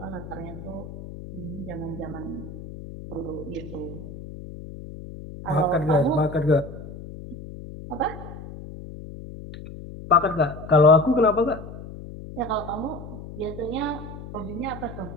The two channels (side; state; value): left; noise; hum, 12 dB below the sound